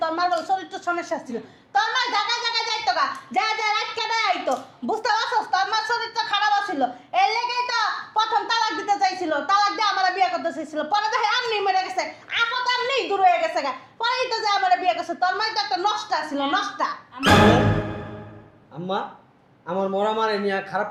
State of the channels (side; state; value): both; identical; correlation 1.00